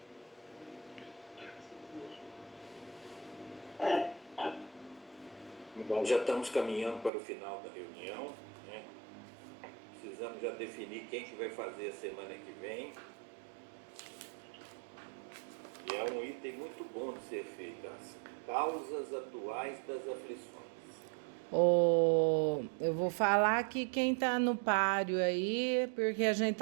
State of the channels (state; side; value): drops out; left; at 7.1 s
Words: Bom, já estamos caminhando para o final da reunião, né? Precisamos já definir quem que vai fazer a semana que vem. E é um item muito bom de ser feito, as causas atuais das aflições. Eu vou falar aqui quem tá no páreo aí, porque a gente